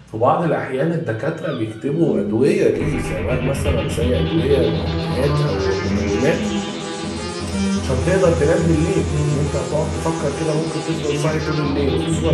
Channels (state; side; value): identical; both; correlation 1.00